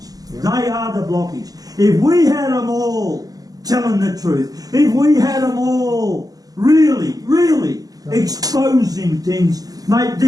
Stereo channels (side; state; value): left; late; 0.18 ms